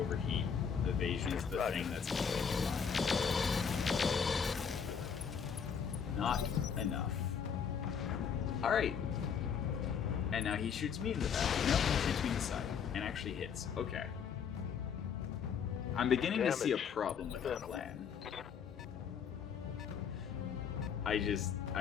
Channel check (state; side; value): quieter; right; 7.0 dB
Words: Evasion is the thing that's keeping me alive. Not enough. Alright. And now he shoots me in the back. No, he shoots me in the side. And actually hits. Okay. I'm beginning to see a problem with that plan. I